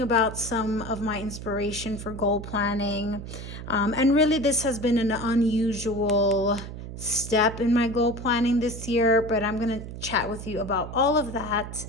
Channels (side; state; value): right; noise; hum, 10 dB below the sound